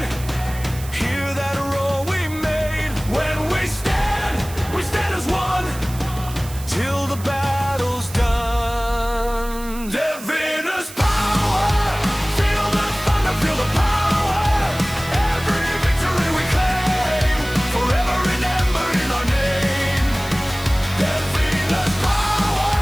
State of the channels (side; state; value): right; noise; hiss, 15 dB below the sound